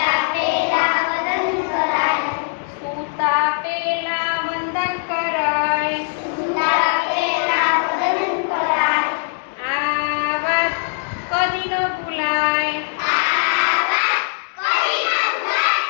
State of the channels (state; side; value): silent; right; 66 dB below the other